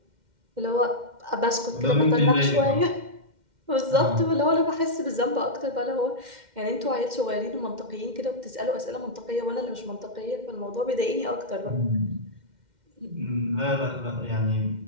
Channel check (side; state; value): left; late; 2.1 ms